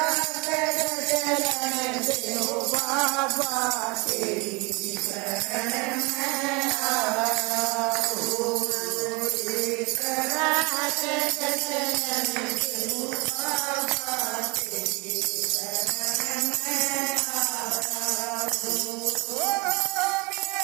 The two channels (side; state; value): left; quieter; 27.3 dB